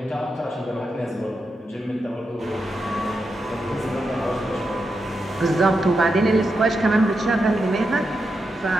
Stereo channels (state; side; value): normal; both; correlation 0.86